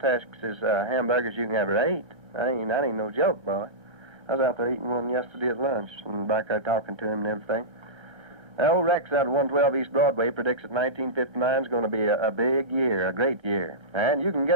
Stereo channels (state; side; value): late; left; 1.6 ms